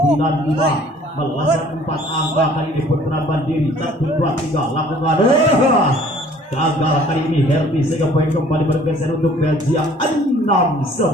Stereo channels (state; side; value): normal; both; correlation 0.54